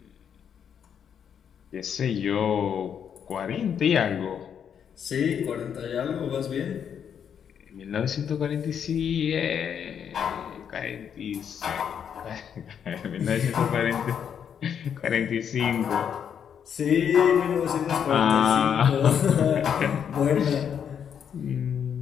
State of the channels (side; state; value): right; quieter; 8.1 dB